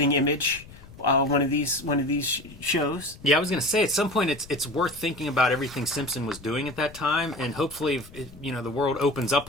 Image one of these shows. Yeah, I was going to say, at some point it's worth thinking about everything Simpson was doing at that time, and hopefully, you know, the world opens up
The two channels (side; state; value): left; noise; rumble, 20 dB below the sound